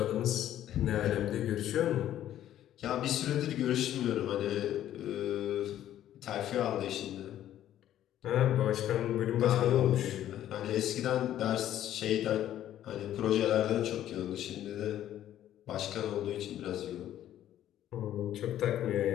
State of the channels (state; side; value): quieter; right; 11.9 dB